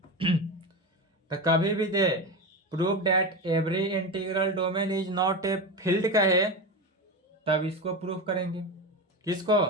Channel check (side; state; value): both; normal; correlation 0.20